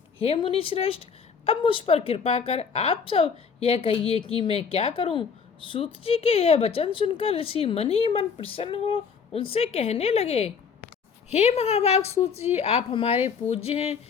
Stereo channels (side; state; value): right; quieter; 6.1 dB